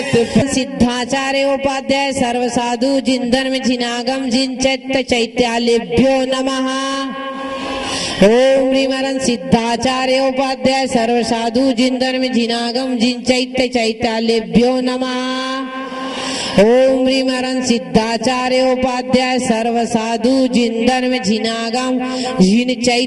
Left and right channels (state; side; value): identical; both; correlation 1.00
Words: सिद्धाचार्य उपाध्याय सर्वसाधु जिंदर में जिनागम जिन चैत्य चैत्यालेभ्यो नमः। ओम ह्रीमरन सिद्धाचार्य उपाध्याय सर्वसाधु जिंदर में जिनागम जिन चैत्य चैत्यालेभ्यो नमः। ओम ह्रीमरन सिद्धाचार्य उपाध्याय सर्वसाधु जिंदर में जिनागम जिन